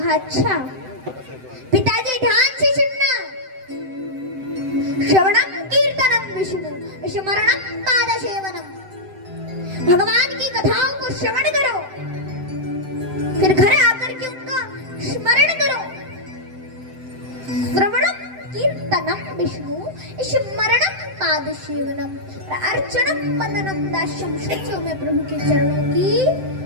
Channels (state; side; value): late; left; 7.8 ms